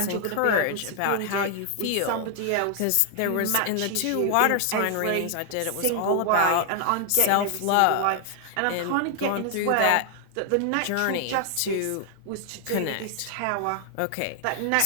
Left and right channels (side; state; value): both; different; correlation 0.00